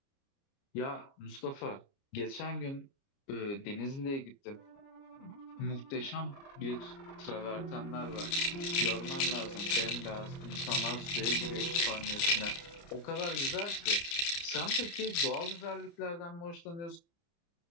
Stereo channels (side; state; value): right; late; 29 ms